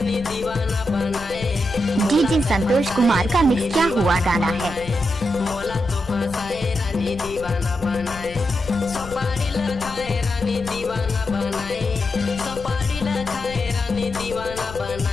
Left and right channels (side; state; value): left; noise; rumble, 14 dB below the sound